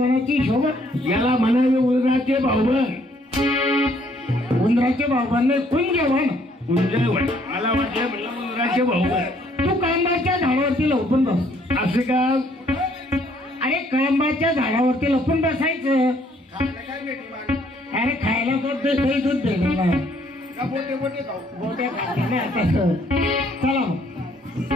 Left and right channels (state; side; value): normal; both; correlation 0.65